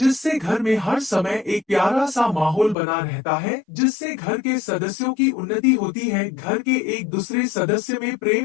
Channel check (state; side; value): drops out; right; at 2.8 s